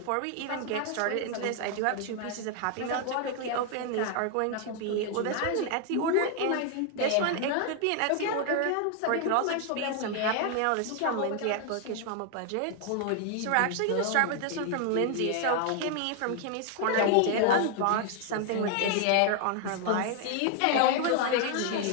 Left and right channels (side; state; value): both; different; correlation 0.00